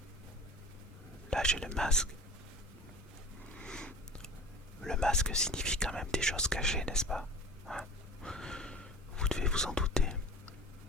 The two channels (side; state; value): both; normal; correlation 0.40